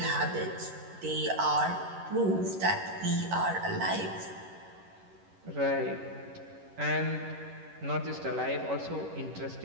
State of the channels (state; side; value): late; left; 11 ms